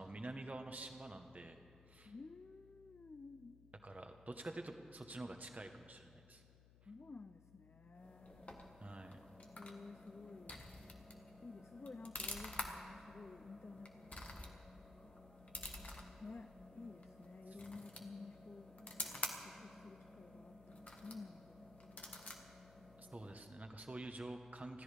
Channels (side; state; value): left; noise; hum, 17 dB below the sound